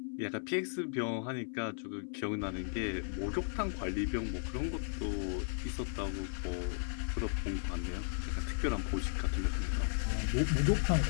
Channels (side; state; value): right; silent; 54 dB below the other